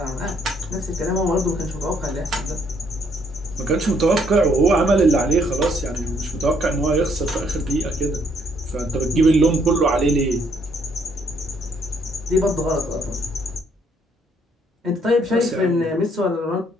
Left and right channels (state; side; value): normal; both; correlation 0.68